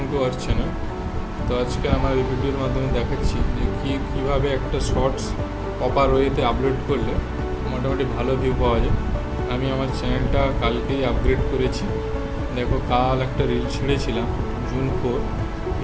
to our channel. তো আজকে আমার এই ভিডিওর মাধ্যমে দেখাচ্ছি যে কীভাবে একটা শর্টস প্রপার ওয়েতে আপলোড করলে মোটামুটি ভালো ভিউ পাওয়া যায়। আমি আমার চ্যানেলটা কালকেই আপগ্রেড করেছি। দেখো কাল একটা রিল ছেড়েছিলাম জুন 4,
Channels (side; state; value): both; identical; correlation 1.00